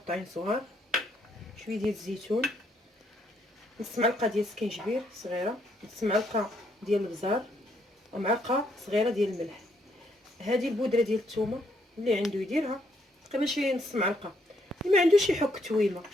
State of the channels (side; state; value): both; normal; correlation 0.72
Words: صغار، شويه ديال الزيتون، نص معلقه ديال السكينجبير صغيره، نص معلقه ديال البزار، ومعلقه صغيره ديال الملح. هذه البودره ديال الثومه اللي عنده يديرها، تقريبا شي نص معلقه، اللي ما عندوش يحك تويمه